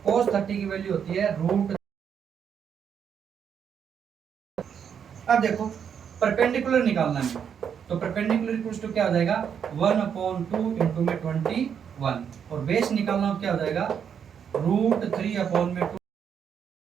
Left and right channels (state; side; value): quieter; left; 7.8 dB